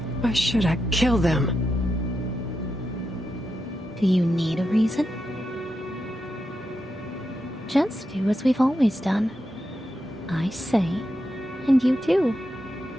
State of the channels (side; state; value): both; normal; correlation 0.87